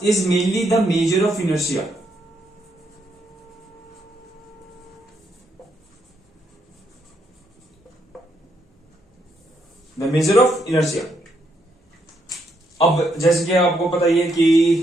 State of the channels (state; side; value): normal; both; correlation 0.76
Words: is mainly the measure of inertia. The measure of inertia. अब जैसे कि आपको पता ही है कि